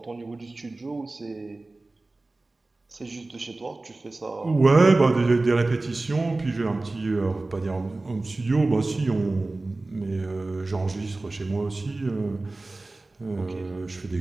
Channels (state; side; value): quieter; left; 3.1 dB